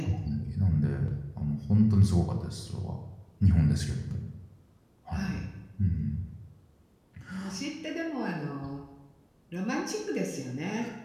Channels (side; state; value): both; identical; correlation 1.00